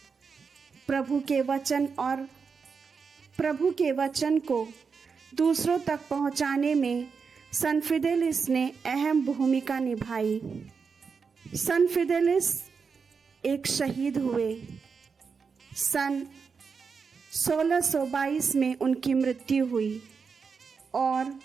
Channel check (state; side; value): quieter; left; 5.5 dB